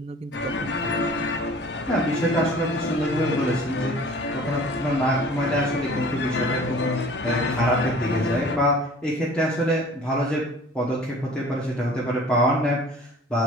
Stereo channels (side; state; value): both; normal; correlation 0.47